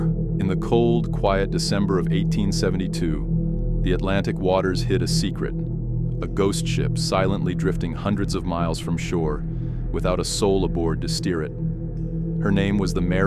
In the cold, quiet December of 1872, the Atlantic waters hid a secret. A ghost ship silently drifting hundreds of miles from shore, without a soul aboard to steer it. Her name was the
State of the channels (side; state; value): both; identical; correlation 1.00